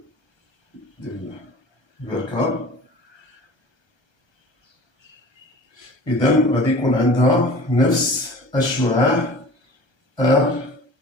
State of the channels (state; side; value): late; right; 1.3 ms